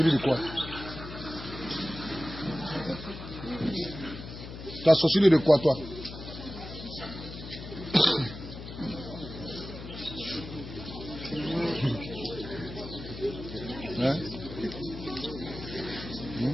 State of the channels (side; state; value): left; noise; hum, 11 dB below the sound